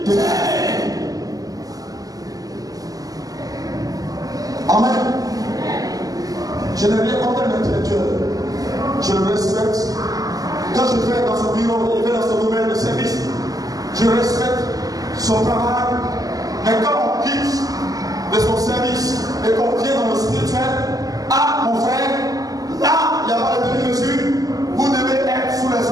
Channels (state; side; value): late; left; 0.17 ms